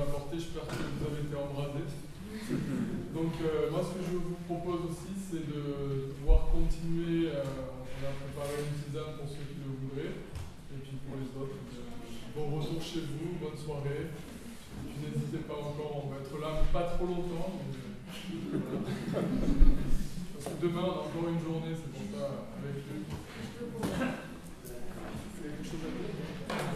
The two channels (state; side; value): identical; both; correlation 1.00